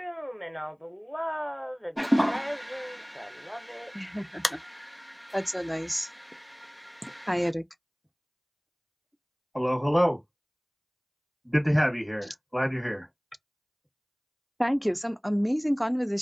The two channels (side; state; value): both; identical; correlation 1.00